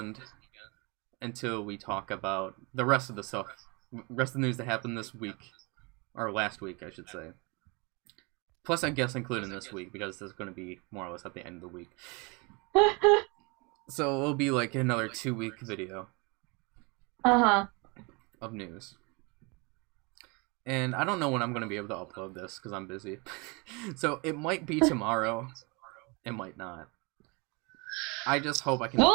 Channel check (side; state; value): left; quieter; 29.1 dB